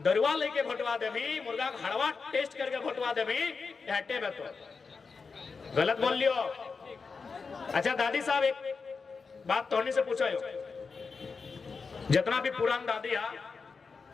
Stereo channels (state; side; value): quieter; right; 4.9 dB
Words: लेके भोटवा देवी, मुर्गा का हड़वा टेस्ट करके भोटवा देवी, हटे में तो गलत बोल लियो। अच्छा दादी साहब, एक बात तोहनी से पूछो, जितना भी पुरान दादी है,